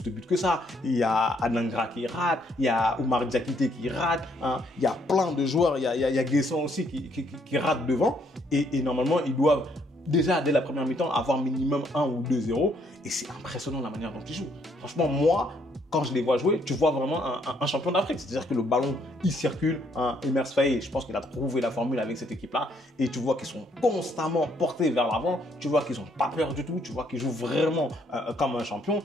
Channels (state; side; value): normal; both; correlation 0.69